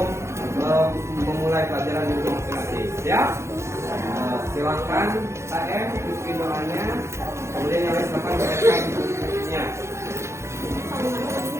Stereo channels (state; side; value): late; left; 0.13 ms